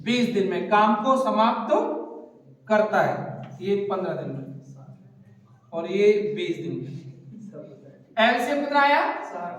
20 दिन में काम को समाप्त करता है। ये 15 दिन में और ये 20 दिन में। एलसीएम कितना आया?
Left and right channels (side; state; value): both; identical; correlation 1.00